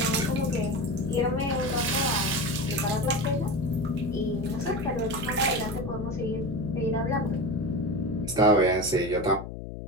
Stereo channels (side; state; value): left; noise; hum, 9 dB below the sound